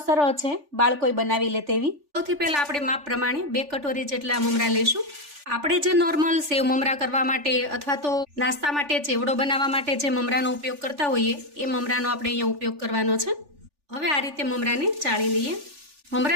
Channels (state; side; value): late; left; 3.4 ms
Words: સરળ છે, બાળકોય બનાવી લે તેવી। સૌથી પહેલા આપણે માપ પ્રમાણે 2 કટોરી જેટલા મમરા લઈશું। આપણે જે નોર્મલ સેવ મમરા કરવા માટે અથવા તો નાસ્તા માટે ચેવડો બનાવવા માટે જે મમરાનો ઉપયોગ કરતા હોઈએ એ મમરાનો આપણે અહીંયા ઉપયોગ કરવાનો છે। હવે આ રીતે મમરાને ચાળી લઈએ।